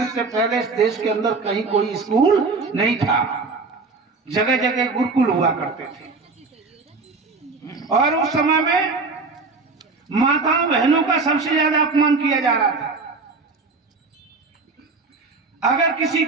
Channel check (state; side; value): quieter; left; 4.0 dB